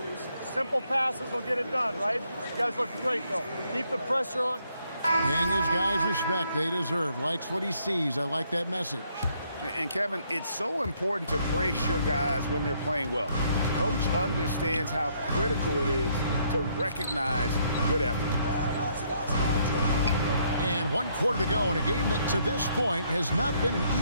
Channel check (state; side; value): inverted; both; correlation -0.70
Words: simple passes will get it done, right? You guys look great, though. Keep the pressure on. Paying his guys respect they deserve. Likes what he sees. I like that message. And Kevin, it's so important to praise your guys when they're playing well. Coach understands how critical it is to recognize good effort. And 1 quarter to go in a game that to this point has not been